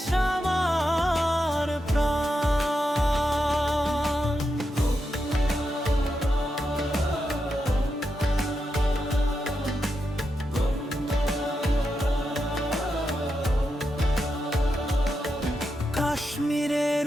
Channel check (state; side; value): normal; both; correlation 0.86